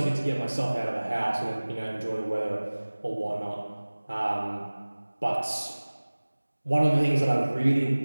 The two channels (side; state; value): both; inverted; correlation -1.00